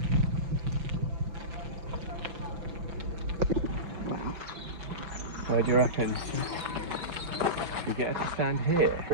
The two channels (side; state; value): left; late; 5.9 ms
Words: Where do you reckon? We get her to stand here.